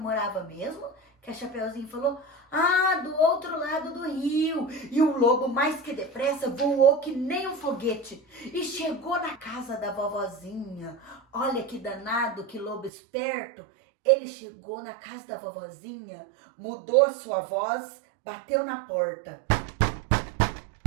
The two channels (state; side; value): drops out; left; at 12.9 s